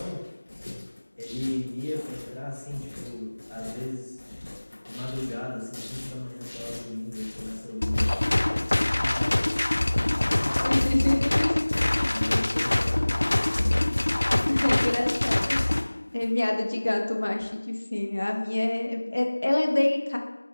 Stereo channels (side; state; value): both; inverted; correlation -1.00